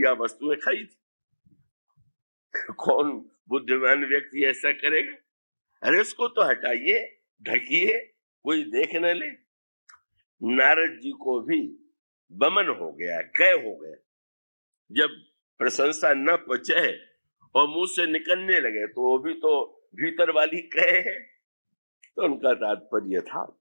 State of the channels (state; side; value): inverted; both; correlation -1.00